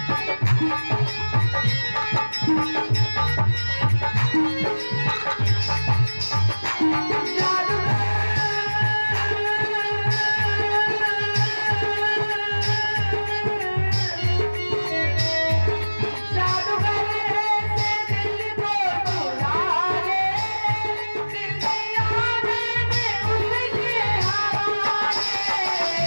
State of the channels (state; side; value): inverted; both; correlation -1.00